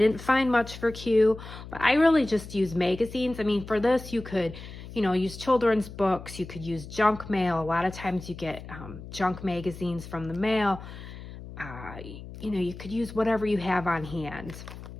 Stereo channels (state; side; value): noise; left; hum, 13 dB below the sound